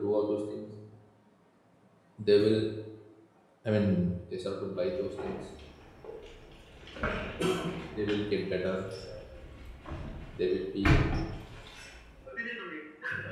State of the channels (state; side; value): identical; both; correlation 1.00